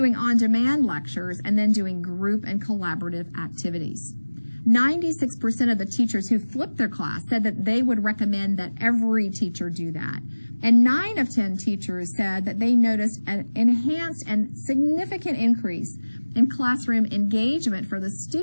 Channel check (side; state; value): both; inverted; correlation -1.00